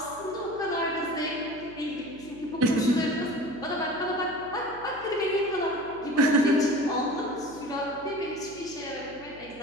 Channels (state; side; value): noise; right; hum, 21 dB below the sound